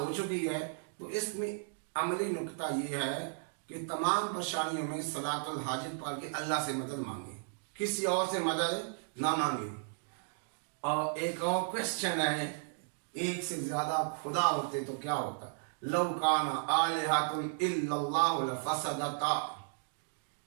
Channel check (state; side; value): silent; left; digital silence